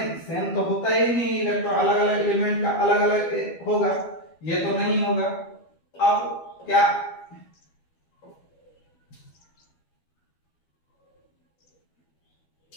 सेम तो होता ही नहीं, इलेक्ट्रॉन अलग अलग एलिमेंट का अलग अलग होगा, ये तो नहीं होगा। अब क्या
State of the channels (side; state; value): right; late; 12 ms